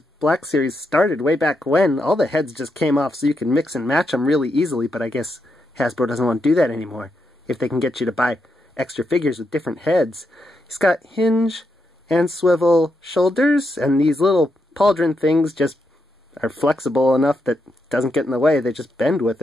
Black Series started way back when, all the heads just came off so you can mix and match them really easily, but I guess Hasbro doesn't want to do that anymore if they can get you to buy extra figures with different heads. He's got hinge and swivel shoulders, and these little pauldron things just are flexible enough that it doesn't get in the way. They just bend with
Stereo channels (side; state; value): both; normal; correlation 0.82